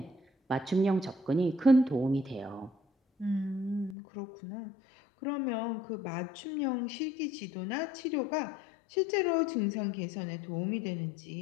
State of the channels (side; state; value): right; drops out; at 4.0 s